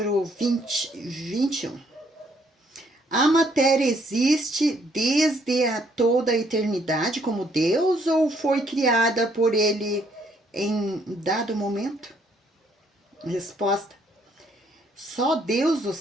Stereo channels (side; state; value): both; normal; correlation 0.68